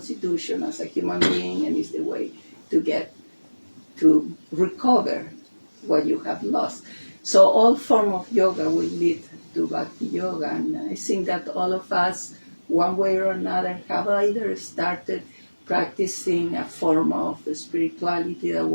as a human being, and it's the way to get to recover what you have lost. So all form of yoga will lead to bhakti yoga, and I think that all of us, one way or another, have either started practicing a form of spirituality that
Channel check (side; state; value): both; inverted; correlation -1.00